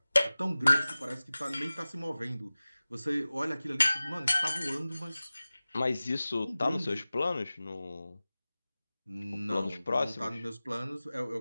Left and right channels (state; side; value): inverted; both; correlation -0.98